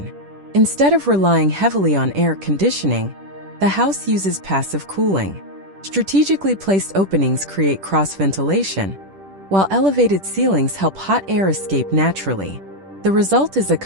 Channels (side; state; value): left; late; 10 ms